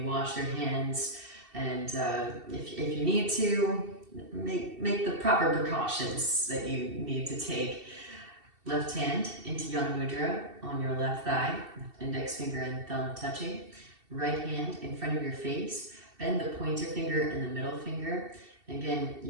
wash your hands, and if you need to, make the proper precautions that you need to take. Left hand into Yang Mudra on your left thigh, index finger and thumb touching. Right hand in front of your face. Bend the pointer finger and the middle finger. Again,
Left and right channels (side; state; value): left; late; 2.7 ms